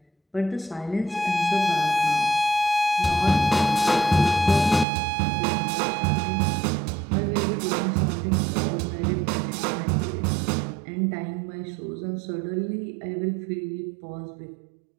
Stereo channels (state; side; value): drops out; left; at 4.9 s